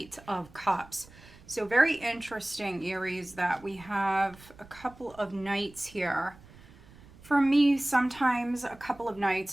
of Cups. So very interesting, Aries, that we have a couple of knights here. For me, sometimes a couple of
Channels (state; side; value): noise; right; rumble, 22 dB below the sound